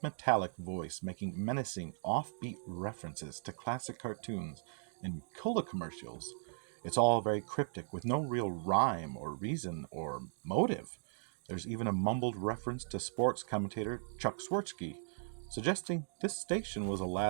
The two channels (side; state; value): left; silent; digital silence